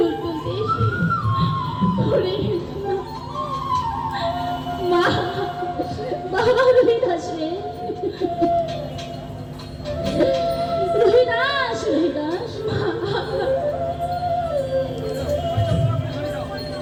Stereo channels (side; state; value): both; identical; correlation 1.00